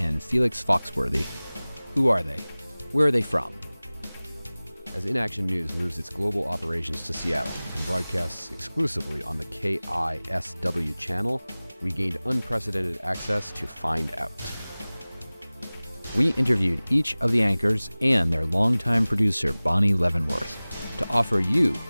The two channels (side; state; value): both; inverted; correlation -0.99